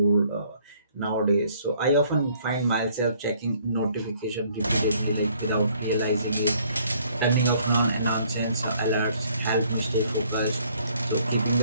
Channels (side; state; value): both; inverted; correlation -0.62